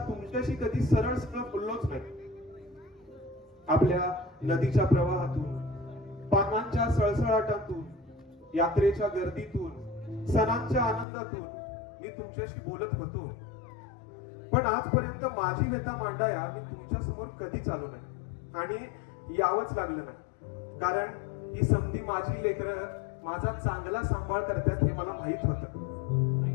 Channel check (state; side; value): drops out; right; at 11.1 s